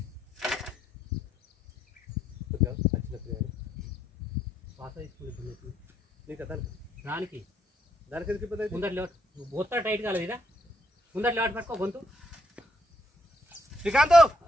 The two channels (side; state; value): both; normal; correlation 0.73